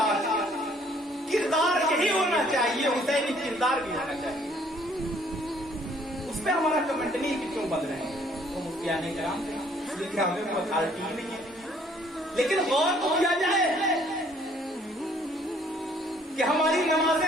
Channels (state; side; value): normal; both; correlation 0.61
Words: کردار یہی ہونا چاہیے، حسینی کردار بھی ہونا چاہیے۔ اس پہ ہمارا کمنٹ نہیں کہ کیوں بن رہے ہیں، وہ مفتیان کرام تھے، اس لیے کہ ہمیں کوئی اتھارٹی ہی نہیں ہے، لیکن غور تو کیا جائے کہ ہماری